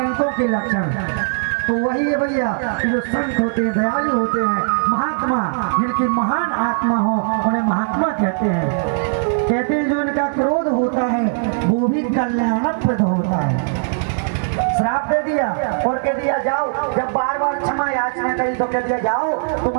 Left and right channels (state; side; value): silent; left; 60 dB below the other